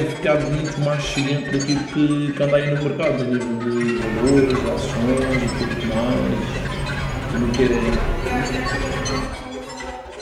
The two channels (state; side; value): identical; both; correlation 1.00